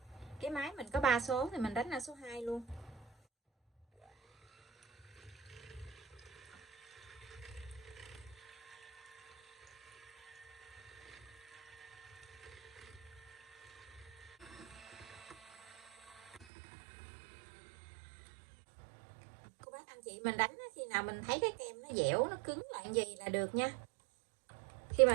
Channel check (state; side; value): drops out; left; at 16.4 s